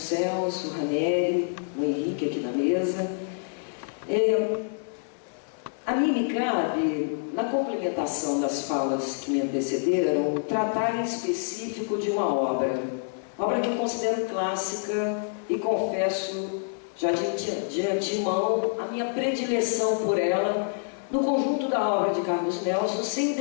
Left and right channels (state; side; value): silent; right; digital silence